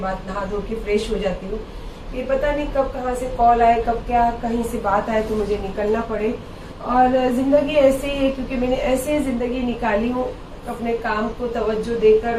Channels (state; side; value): identical; both; correlation 1.00